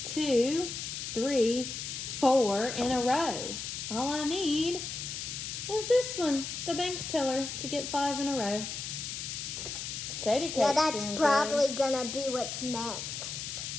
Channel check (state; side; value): noise; left; hiss, 6 dB below the sound